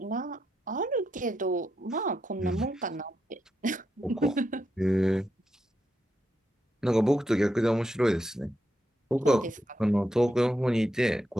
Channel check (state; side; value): normal; both; correlation 0.83